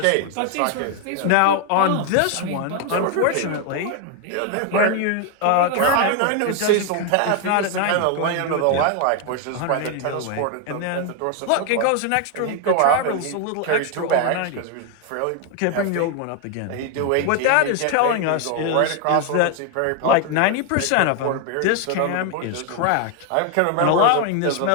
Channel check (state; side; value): different; both; correlation 0.01